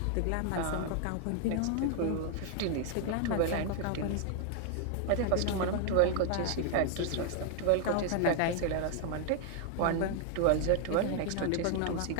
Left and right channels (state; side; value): different; both; correlation 0.00